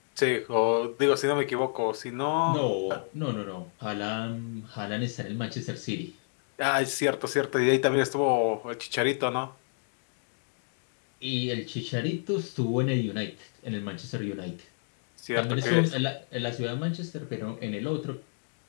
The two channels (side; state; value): right; silent; digital silence